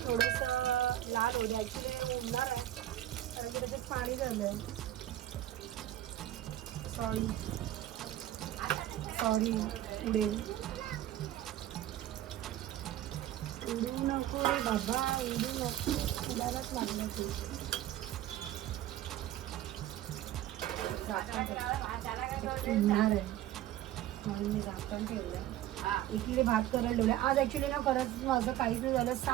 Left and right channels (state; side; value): quieter; left; 13.2 dB